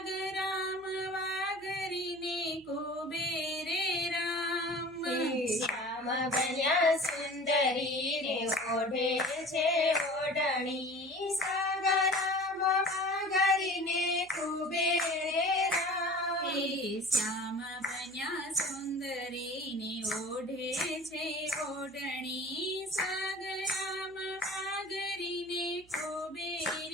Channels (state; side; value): noise; right; hum, 28 dB below the sound